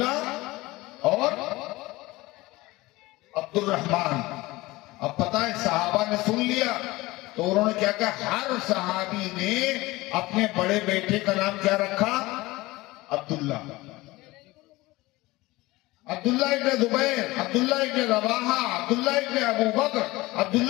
اور عبد الرحمن. اب پتہ ہے صحابہ نے سن لیا تو انہوں نے کیا کہا؟ ہر صحابی نے اپنے بڑے بیٹے کا نام کیا رکھا؟ عبداللہ. عبداللہ ابن زبیر، عبداللہ ابن رواحہ، عبداللہ ابن ابو بکر،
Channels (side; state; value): right; quieter; 20.1 dB